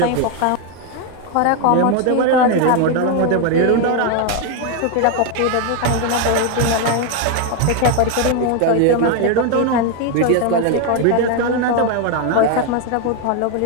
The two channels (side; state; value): both; different; correlation 0.01